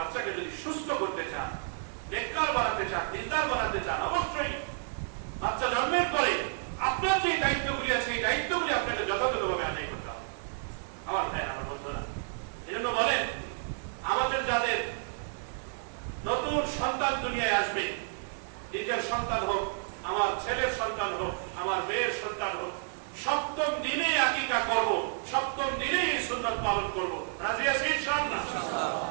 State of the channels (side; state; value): left; silent; digital silence